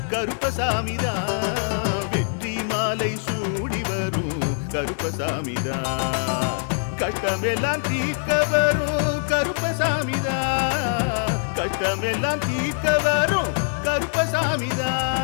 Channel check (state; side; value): silent; right; digital silence